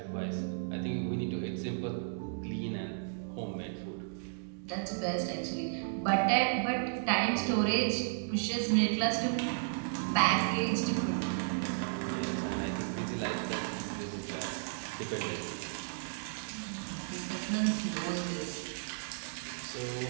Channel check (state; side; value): silent; left; digital silence